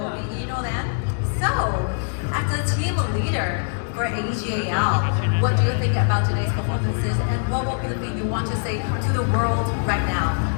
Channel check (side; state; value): right; silent; digital silence